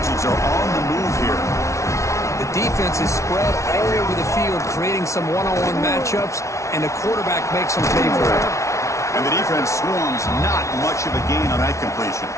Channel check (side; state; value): right; late; 0.14 ms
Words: are on the move here. The defense is spread all over the field, creating some one-on-one matchups, and the quarterback makes them pay for it. And the defense swarms. Not much of a gain on that completion.